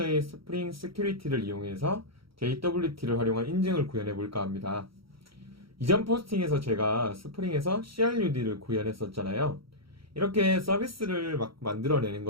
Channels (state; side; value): late; left; 0.75 ms